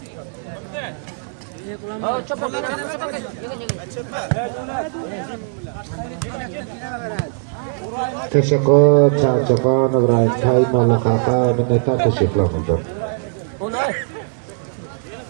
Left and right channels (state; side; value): silent; left; digital silence